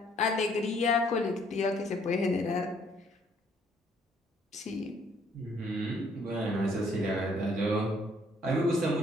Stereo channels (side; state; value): both; normal; correlation 0.64